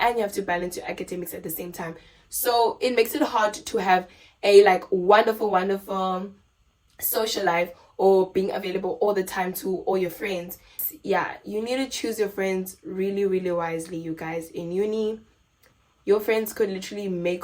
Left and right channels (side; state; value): both; identical; correlation 1.00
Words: you have to balance your academics at the same time. So it makes it hard to have a wonderful social life or being available all the time to all your friends. Yeah, you need to choose your friends really, really wisely, you guys. In uni, your friends could literally